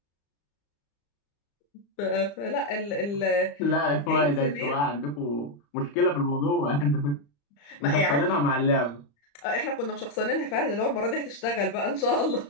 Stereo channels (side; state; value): right; late; 35 ms